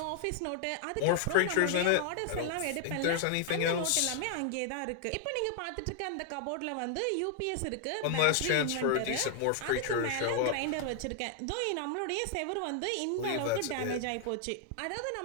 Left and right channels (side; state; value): both; different; correlation 0.00